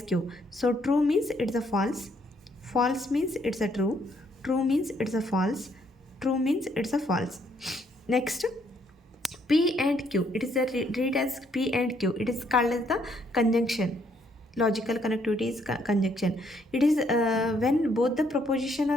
Q. So true means it's a false. False means it's a true. True means it's a false. True means it's a false. Next, P and Q. It is read as P and Q. It is called as the conjunction. Logical connectivity is conjunction. It is when both the proposition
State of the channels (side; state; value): both; normal; correlation 0.70